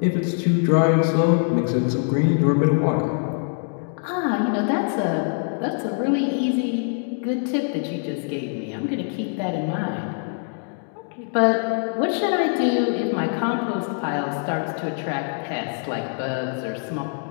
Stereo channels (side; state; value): right; silent; 58 dB below the other